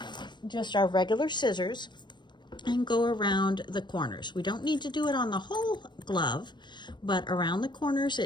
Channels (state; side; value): late; right; 0.22 ms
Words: just our regular scissors and go around the corners. We don't need to do it on the whole glove, but around the corners